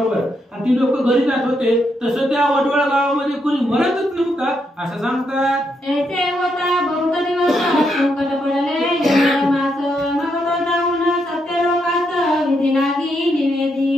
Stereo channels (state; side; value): normal; both; correlation 0.79